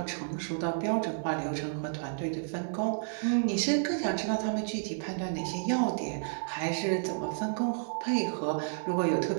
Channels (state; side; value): silent; left; 57 dB below the other